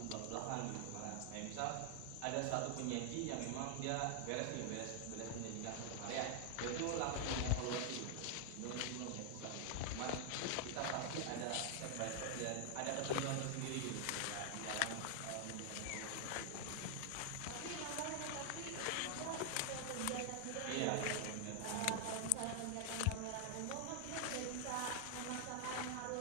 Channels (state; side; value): different; both; correlation 0.00